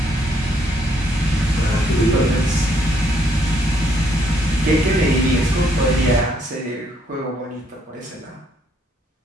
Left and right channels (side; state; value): both; normal; correlation 0.71